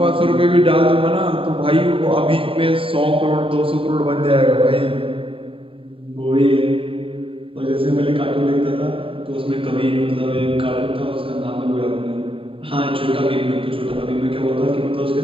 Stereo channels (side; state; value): left; late; 0.26 ms